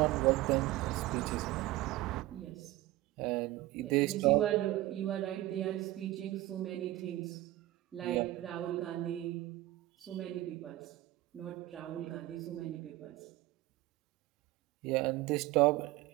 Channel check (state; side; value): quieter; left; 16.8 dB